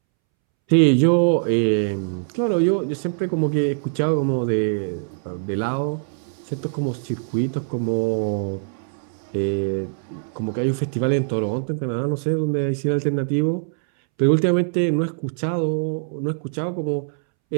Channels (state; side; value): silent; left; 64 dB below the other